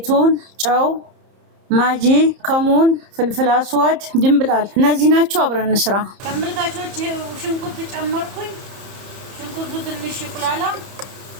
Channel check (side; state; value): left; late; 30 ms